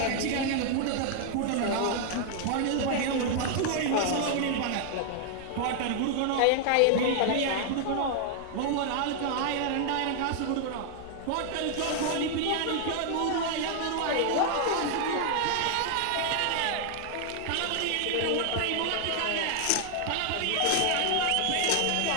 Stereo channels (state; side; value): different; both; correlation 0.00